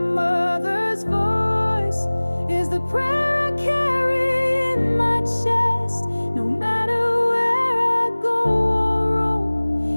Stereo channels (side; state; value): both; inverted; correlation -1.00